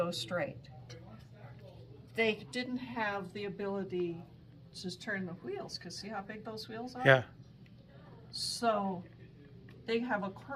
straight. They didn't have the ability to just turn the wheels, because see how big those wheels are? Yeah. So they have a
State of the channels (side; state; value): both; identical; correlation 1.00